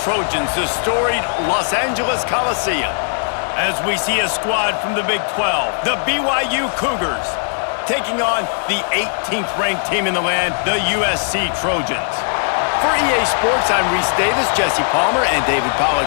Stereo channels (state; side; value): silent; right; 61 dB below the other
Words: the storied Los Angeles Coliseum. As we see a squad from the Big 12, the BYU Cougars, taking on the 18th ranked team in the land, the USC Trojans. For EA Sports, I'm Reese Davis, Jesse Palmer, and David